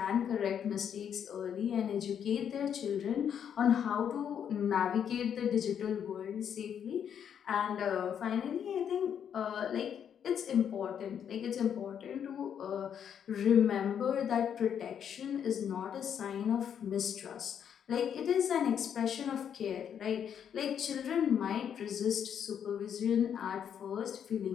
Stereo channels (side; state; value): right; quieter; 8.5 dB